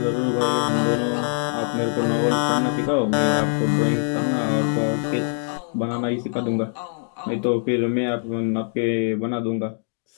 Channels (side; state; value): right; silent; digital silence